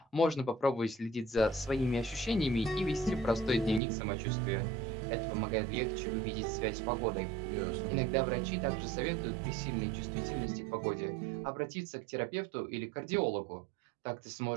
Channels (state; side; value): drops out; left; at 3.8 s